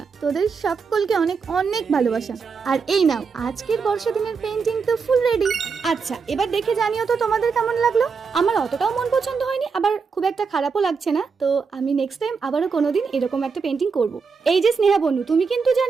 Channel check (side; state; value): left; quieter; 5.4 dB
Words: তোদের সকলকে অনেক অনেক ভালোবাসা। আর এই নাও আজকের বর্ষা দিনের পেইন্টিং তো ফুল রেডি। আচ্ছা এবার দেখে জানিও তো তোমাদের কেমন লাগলো। আমার অতটাও মন পছন্দ হয়নি, আবার খুব একটা খারাপও লাগছে না। তো আমি নেক্সট টাইম আবারও কোনোদিন এরকম একটা পেইন্টিং করব। এই যে স্নেহা বনু, তুমি কিন্তু